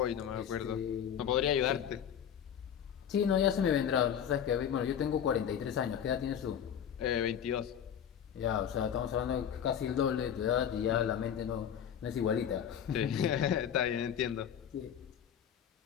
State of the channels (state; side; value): quieter; right; 8.9 dB